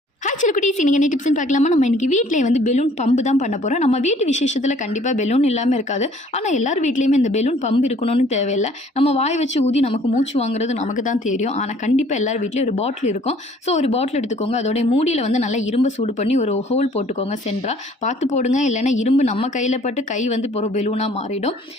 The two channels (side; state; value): both; normal; correlation 0.57